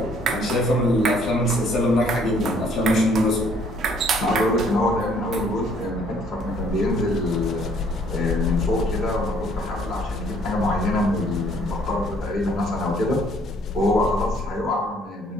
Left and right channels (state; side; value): normal; both; correlation 0.62